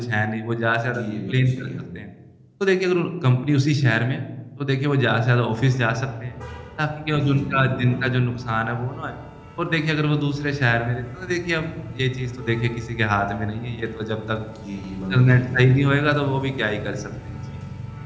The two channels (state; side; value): identical; both; correlation 1.00